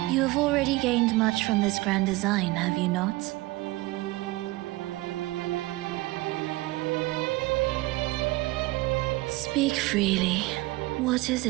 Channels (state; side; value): quieter; left; 20.5 dB